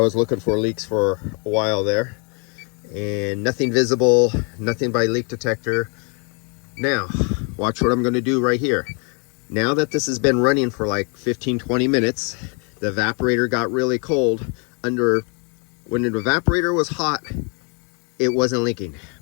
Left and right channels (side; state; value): right; quieter; 35.6 dB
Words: looking for leaks for a while there, and nothing visible, nothing by leak detector. Now, watch what I'm going to do right here. Now that this has been running for like 15-20 minutes, the evaporator got really cold. When the evaporator was hot, it wasn't leaking.